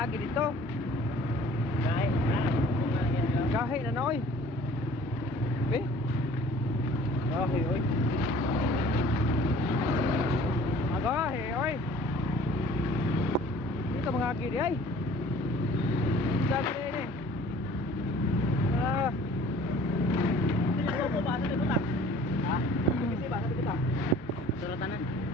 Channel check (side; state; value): both; normal; correlation 0.50